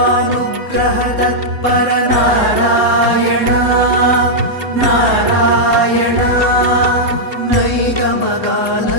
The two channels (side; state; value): left; late; 3.6 ms